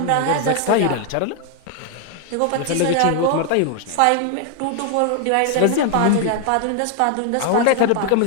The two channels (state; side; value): different; both; correlation 0.00